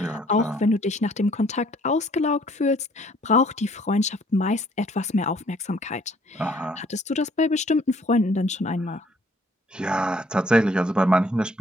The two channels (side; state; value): both; normal; correlation 0.61